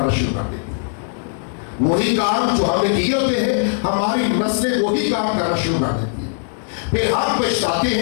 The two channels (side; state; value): right; silent; digital silence